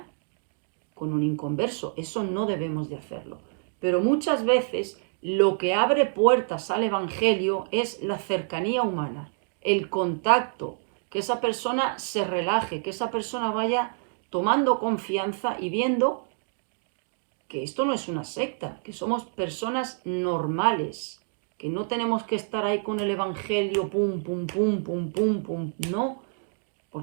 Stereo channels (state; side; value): silent; left; digital silence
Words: con un inconverso. Eso no debemos de hacerlo. Pero muchas veces lo que abre puertas al Evangelio es la cercanía humana, el contacto, que esa persona se relaje, que esa persona vaya tomando confianza y viendo que esto no es una secta, que somos personas normales, que no tenemos que estar ahí con el Evangelio, pum, pum, pum, pum, pum, pum, no,